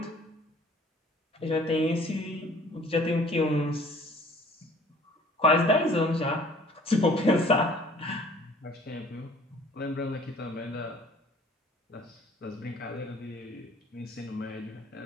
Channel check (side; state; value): both; normal; correlation 0.53